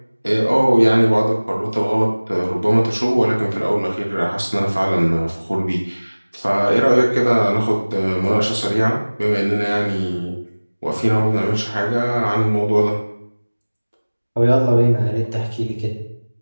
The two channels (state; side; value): inverted; both; correlation -1.00